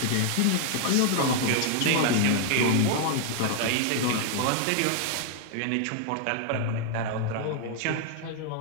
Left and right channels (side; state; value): both; different; correlation 0.00